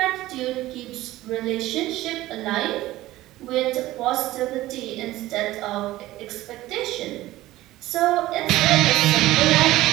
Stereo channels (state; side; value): quieter; left; 16.5 dB